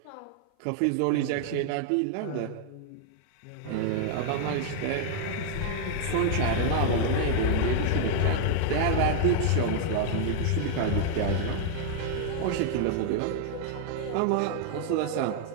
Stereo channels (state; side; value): different; both; correlation 0.00